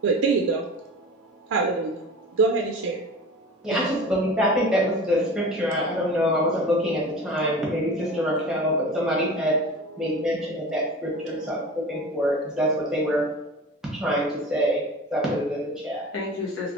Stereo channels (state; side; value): normal; both; correlation 0.36